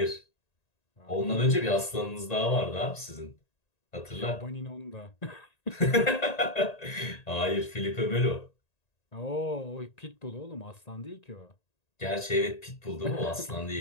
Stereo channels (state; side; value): late; right; 1.9 ms